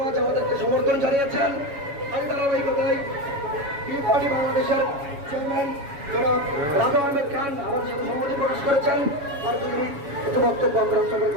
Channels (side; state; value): left; late; 7.2 ms